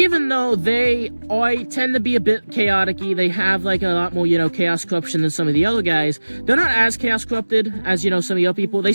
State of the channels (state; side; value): inverted; both; correlation -1.00